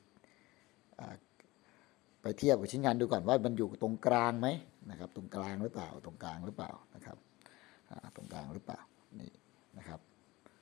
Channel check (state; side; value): quieter; right; 20.5 dB